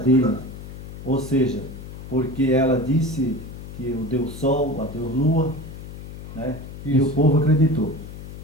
Ou seja, porque ela disse que o Deus Sol, a Deus Lua, né? E o povo acreditou.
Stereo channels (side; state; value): left; noise; hum, 12 dB below the sound